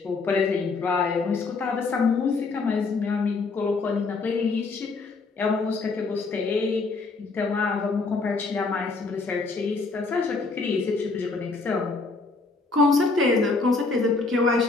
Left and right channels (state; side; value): quieter; right; 4.0 dB